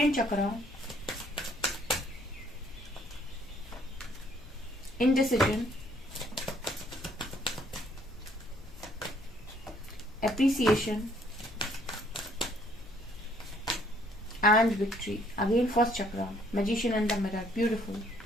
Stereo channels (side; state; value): both; normal; correlation 0.64